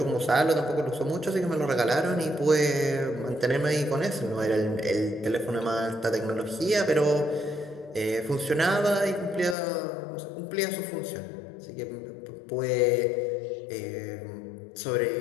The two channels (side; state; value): right; drops out; at 9.6 s